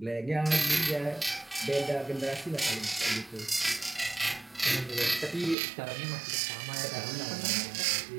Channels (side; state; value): left; drops out; at 5.6 s